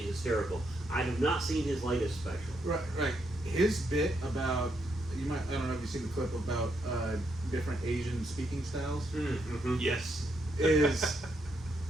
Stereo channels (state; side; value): normal; both; correlation 0.78